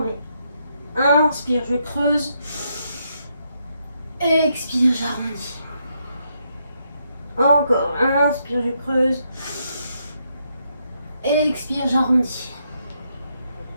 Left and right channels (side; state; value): both; inverted; correlation -0.78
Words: Inspire, je creuse. Expire, j'arrondis. Encore, inspire, je creuse. Expire, j'arrondis.